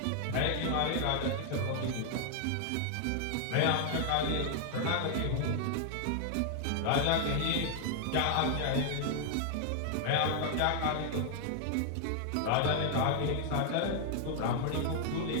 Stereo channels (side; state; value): both; different; correlation 0.00